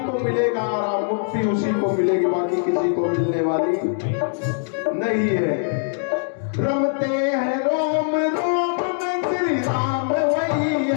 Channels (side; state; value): right; silent; 64 dB below the other